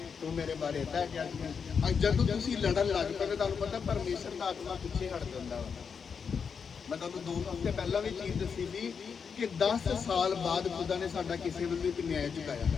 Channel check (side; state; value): right; quieter; 6.2 dB